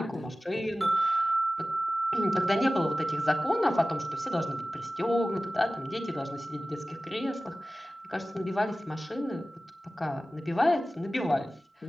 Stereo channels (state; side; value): normal; both; correlation 0.96